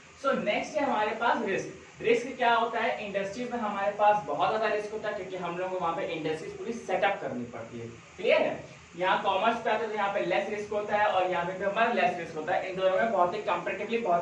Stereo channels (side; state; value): both; identical; correlation 1.00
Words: सो नेक्स्ट है हमारे पास रिस्क। रिस्क क्या होता है, इंडस्ट्री में हमारे पास बहुत ज्यादा रिस्क होता है क्योंकि हम लोग को वहां पे इंडस्ट्रीज पूरी सेटअप करनी पड़ती है। क्लियर है? यहाँ कॉमर्स पे आता है तो यहाँ पे लेस रिस्क होता है और यहाँ पे हमारा लेस रिस्क होता है, इन दोनों में बहुत ही कंपैरेटिवली